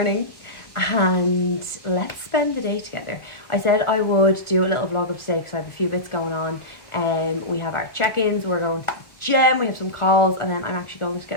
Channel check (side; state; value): right; late; 1.4 ms